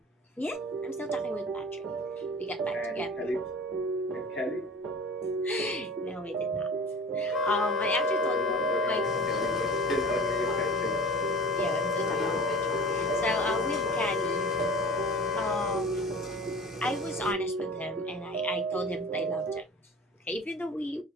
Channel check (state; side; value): normal; both; correlation 0.39